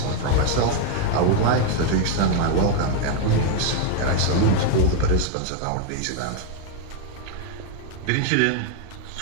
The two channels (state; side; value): different; both; correlation 0.01